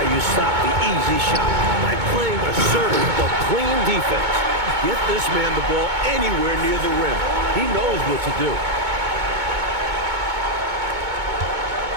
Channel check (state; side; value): late; left; 2.2 ms